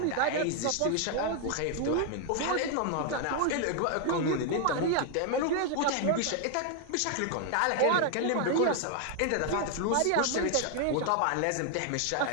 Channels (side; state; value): both; different; correlation 0.00